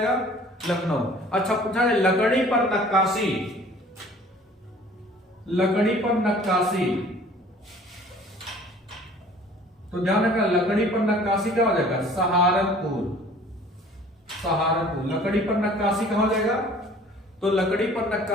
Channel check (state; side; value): normal; both; correlation 0.50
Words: लखनऊ। अच्छा पूछा है लकड़ी पर नक्काशी, लकड़ी पर नक्काशी, तो ध्यान रखना लकड़ी पर नक्काशी क्या हो जाएगा? सहारनपुर, सहारनपुर। लकड़ी पर नक्काशी कहां हो जाएगा? तो लकड़ी पर